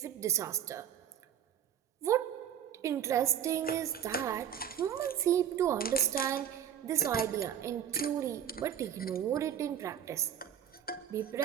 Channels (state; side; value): quieter; left; 9.5 dB